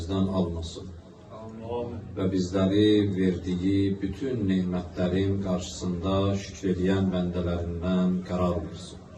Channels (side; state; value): both; identical; correlation 1.00